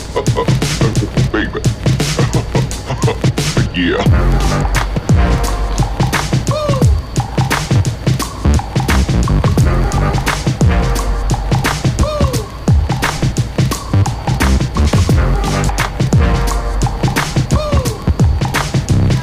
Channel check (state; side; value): identical; both; correlation 1.00